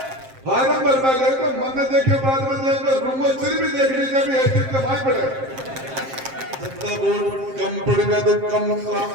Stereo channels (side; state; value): left; late; 7.6 ms